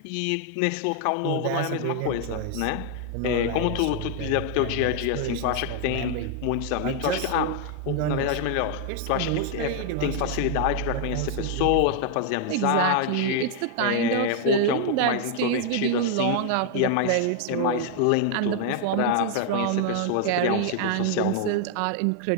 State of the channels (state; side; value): different; both; correlation 0.00